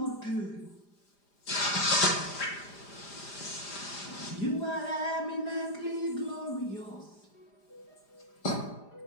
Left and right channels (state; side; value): late; right; 4.9 ms